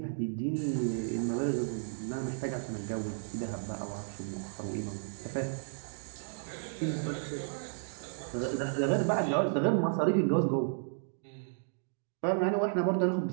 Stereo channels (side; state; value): left; silent; digital silence